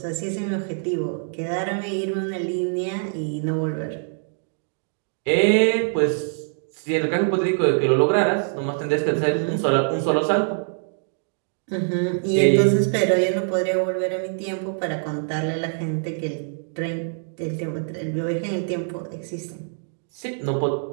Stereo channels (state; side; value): silent; left; digital silence